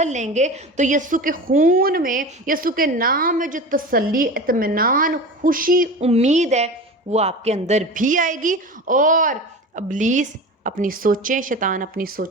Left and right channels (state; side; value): normal; both; correlation 0.31